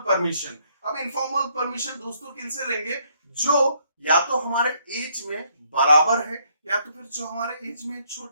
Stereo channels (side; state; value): both; inverted; correlation -0.70